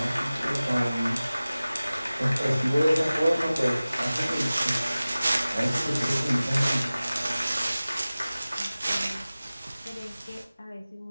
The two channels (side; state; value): both; inverted; correlation -0.97